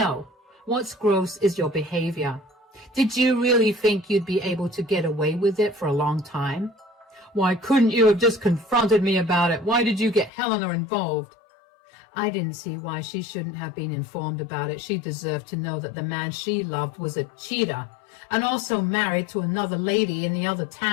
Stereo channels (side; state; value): right; drops out; at 10.3 s